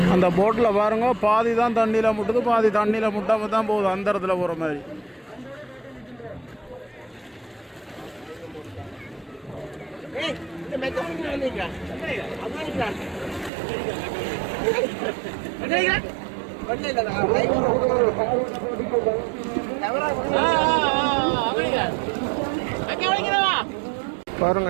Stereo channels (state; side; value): drops out; left; at 13.5 s